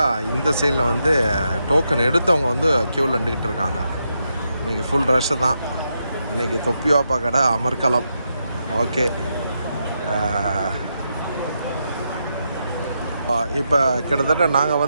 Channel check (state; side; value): inverted; both; correlation -0.83